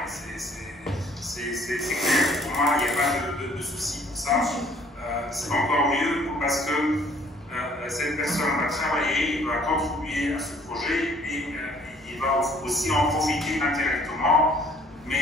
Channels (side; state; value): both; normal; correlation 0.58